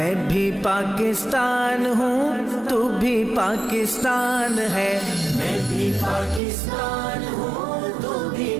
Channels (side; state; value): left; drops out; at 6.4 s